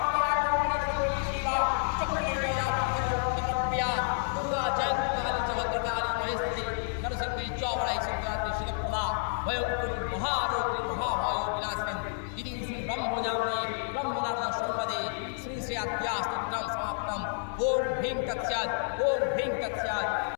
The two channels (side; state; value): right; silent; digital silence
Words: शिवा चक्रे जया प्रिया दुर्गा जय भयंकर महारोगी महाभयो विनाशिनी इति श्री ब्रह्मजाने ब्रह्मनारायण संपदे श्री श्री अध्यास्तुत्रं समाप्तम ओम भीम तत्स्यात् ओम भीम तत्स्यात्